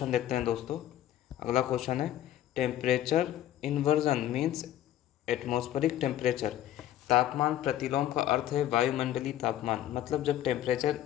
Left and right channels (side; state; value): right; quieter; 12.3 dB